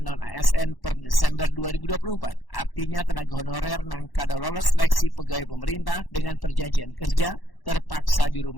non-ASN per Desember 2024. Artinya tenaga honorer yang kada lolos seleksi pegawai pemerintah dengan perjanjian kerja terpaksa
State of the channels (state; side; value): late; right; 1.1 ms